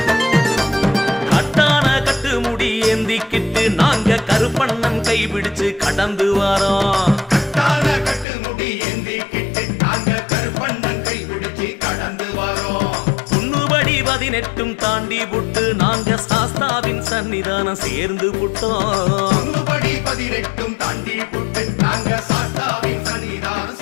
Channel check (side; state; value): right; drops out; at 8.2 s